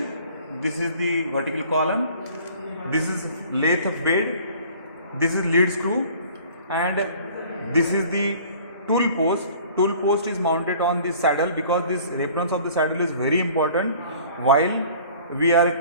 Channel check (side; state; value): both; inverted; correlation -0.50